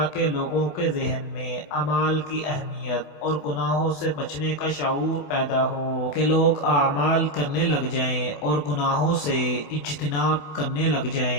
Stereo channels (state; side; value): late; right; 28 ms